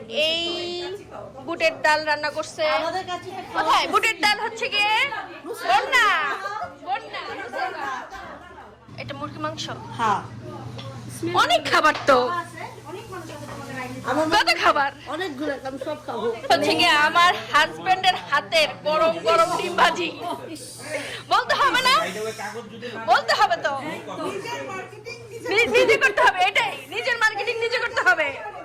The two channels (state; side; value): identical; both; correlation 1.00